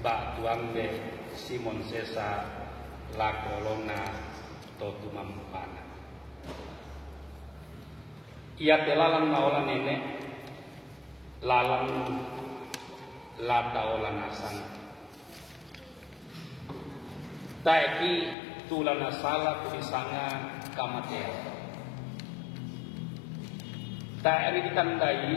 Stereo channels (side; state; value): right; drops out; at 18.4 s